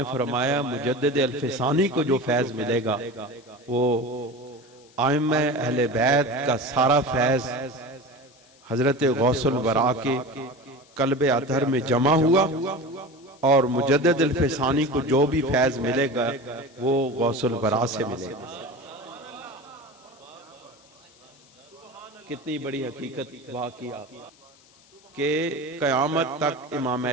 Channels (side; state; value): left; noise; hiss, 28 dB below the sound